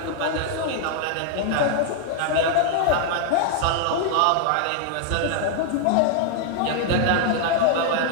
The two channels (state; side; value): different; both; correlation 0.00